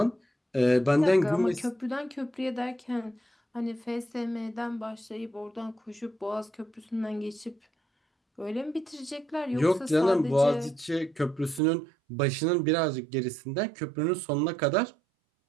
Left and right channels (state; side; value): drops out; left; at 11.6 s